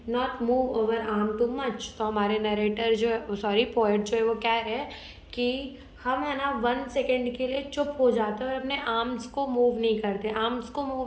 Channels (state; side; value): identical; both; correlation 1.00